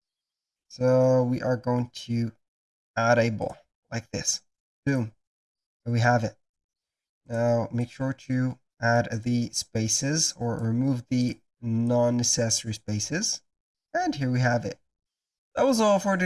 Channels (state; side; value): identical; both; correlation 1.00